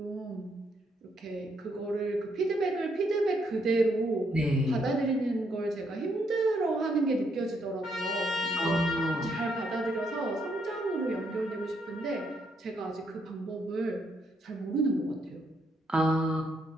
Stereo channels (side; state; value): both; normal; correlation 0.75